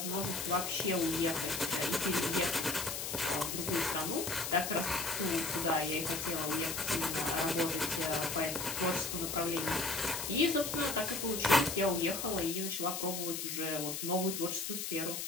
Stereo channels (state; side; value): noise; left; hiss, 4 dB below the sound